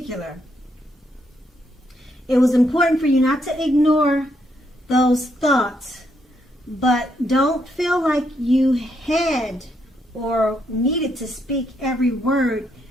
It was important for you not to ignore those thoughts, but don't feel like you had or needed to speak every word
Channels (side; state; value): both; normal; correlation 0.76